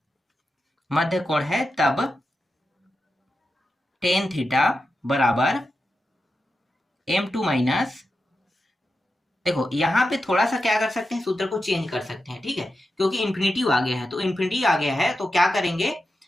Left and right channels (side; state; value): both; normal; correlation 0.89